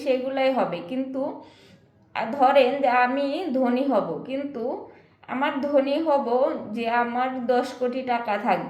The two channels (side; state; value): both; identical; correlation 1.00